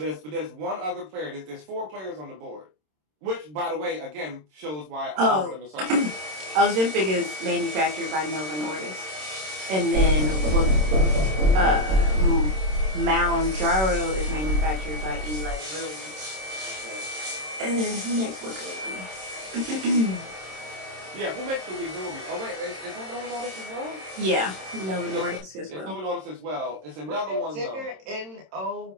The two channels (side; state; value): left; late; 26 ms